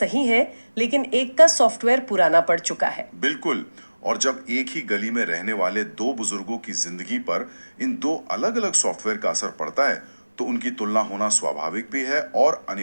है, लेकिन एक का सॉफ्टवेयर पुराना पड़ चुका है। बिल्कुल। और जब एक ही गली में रहने वाले दो बुजुर्गों की जिंदगी पर इन दो अलग अलग सॉफ्टवेयर का असर पड़ता है, तो उनकी तुलना होना स्वाभाविक भी है और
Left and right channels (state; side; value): inverted; both; correlation -1.00